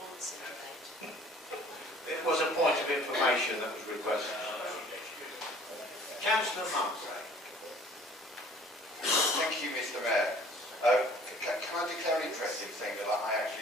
once in a debate. It was a point of information that was requested. Councillor Mumford. Thank you, Mr Mayor. Can I declare an interest in saying that I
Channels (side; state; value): both; normal; correlation 0.52